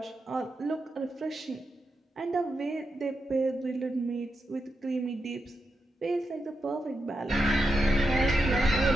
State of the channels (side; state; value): both; normal; correlation 0.86